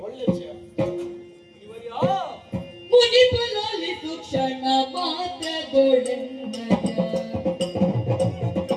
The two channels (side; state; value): both; identical; correlation 1.00